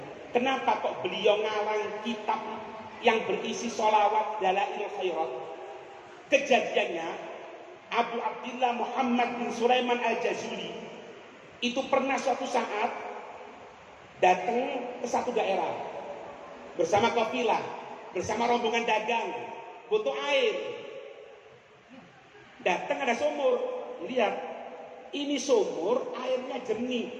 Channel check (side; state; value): both; identical; correlation 1.00